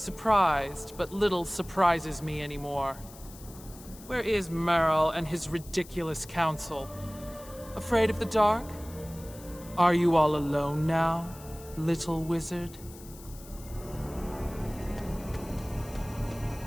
but little surprises me anymore. Where is Merrill and his ridiculous council? Afraid of the dark? Are you all alone now, little wizard?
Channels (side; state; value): left; noise; hiss, 19 dB below the sound